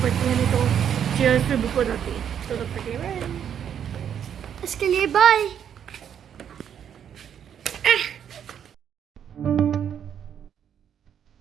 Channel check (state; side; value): quieter; left; 8.8 dB